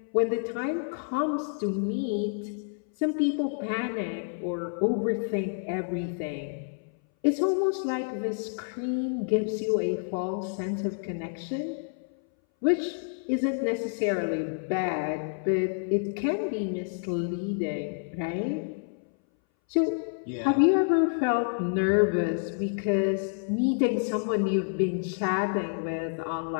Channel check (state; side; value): silent; right; 59 dB below the other